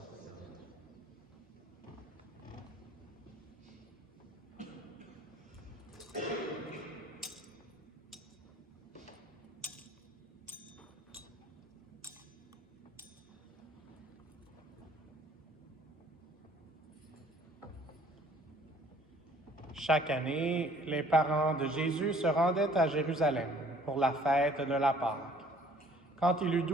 Chaque année, les parents de Jésus se rendaient à Jérusalem pour la fête de la Pâque. Quand il eut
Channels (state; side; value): normal; both; correlation 0.57